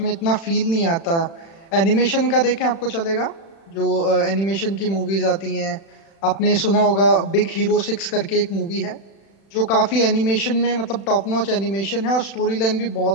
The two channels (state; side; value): late; right; 36 ms